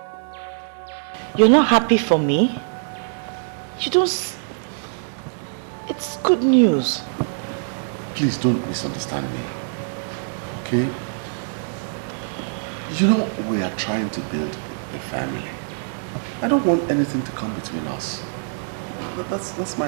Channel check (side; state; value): left; silent; digital silence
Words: You're not happy for me? You don't... It's good news. Please don't misunderstand me, okay? You know, we are trying to build a family. I don't want anything to come between us. That's